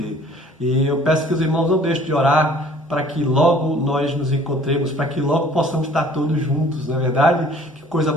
E eu peço que os irmãos não deixem de orar para que logo nós nos encontremos, para que logo possamos estar todos juntos, não é verdade? Que coisa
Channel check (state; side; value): normal; both; correlation 0.53